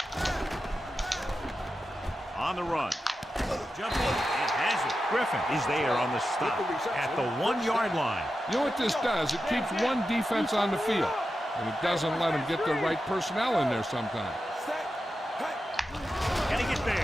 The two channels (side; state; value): both; normal; correlation 0.91